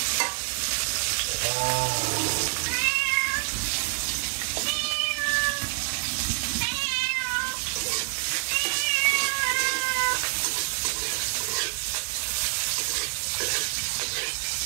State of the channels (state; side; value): silent; left; digital silence